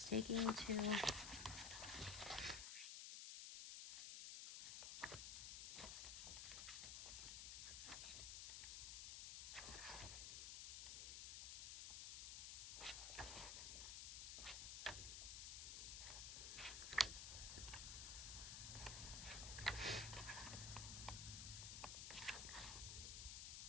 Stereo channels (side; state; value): left; noise; hiss, 3 dB below the sound